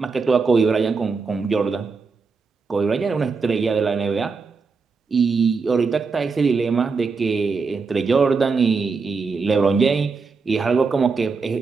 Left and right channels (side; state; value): left; quieter; 4.8 dB